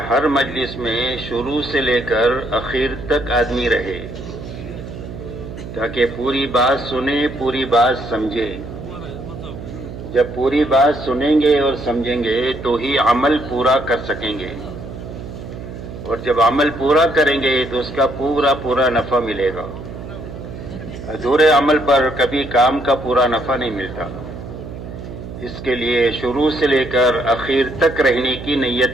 ہر مجلس میں شروع سے لے کر اخیر تک آدمی رہے تاکہ پوری بات سنے، پوری بات سمجھے. جب پوری بات سنیں گے اور سمجھیں گے تو ہی عمل پورا کر سکیں گے، اور جب عمل پورا کریں گے تو اس کا پورا نفع ملے گا. ادھورے عمل پر کبھی کام کا پورا نفع نہیں ملتا. اس کے لیے شروع سے لے کر اخیر تک رہنے کی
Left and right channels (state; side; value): noise; right; hum, 11 dB below the sound